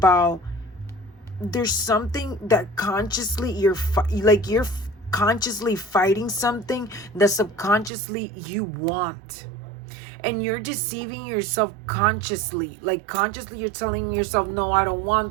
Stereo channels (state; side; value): drops out; left; at 7.9 s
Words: there's something that consciously you're consciously fighting something that subconsciously you want. And you're deceiving yourself consciously. Like, consciously you're telling yourself, no, I don't